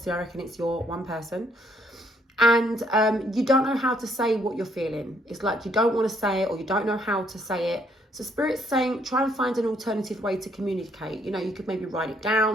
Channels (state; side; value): normal; both; correlation 0.68